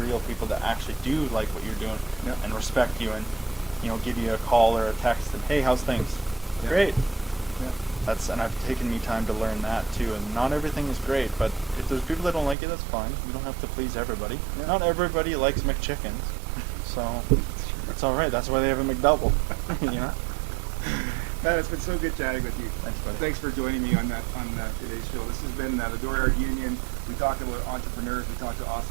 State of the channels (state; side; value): drops out; left; at 12.6 s